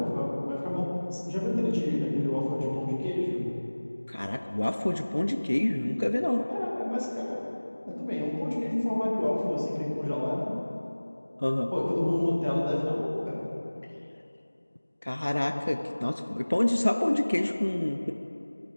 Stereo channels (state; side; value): inverted; both; correlation -1.00